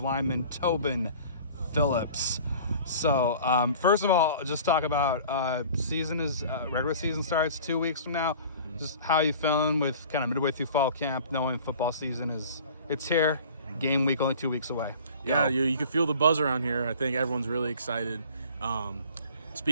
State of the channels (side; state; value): both; inverted; correlation -0.45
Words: lineman Tobin Phillips. So, first of all, just talk about regular season starts 2 weeks from now. Just how you feeling with kind of midway through fall camp, knowing football season it's here, game week only 2 weeks away. Yeah, you can feel the buzz around here. I think everyone's really excited.